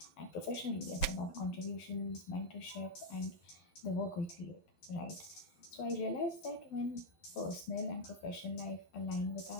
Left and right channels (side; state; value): right; late; 11 ms